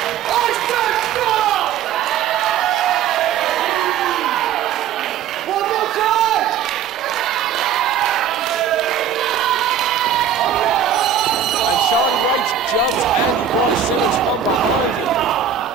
And Charlie Rage jumps Andy Boy Simmonz from behind him.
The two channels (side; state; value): left; quieter; 8.3 dB